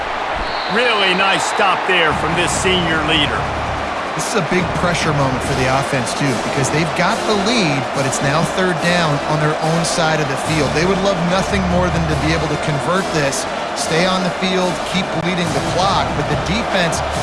Really nice stop there from this senior leader. This is a big pressure moment for the offense, too, because they've got the lead, but it's now 3rd down on their own side of the field. They would love nothing more than to be able to convert this stay on the field, keep bleeding the clock. But the defense,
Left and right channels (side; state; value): both; identical; correlation 1.00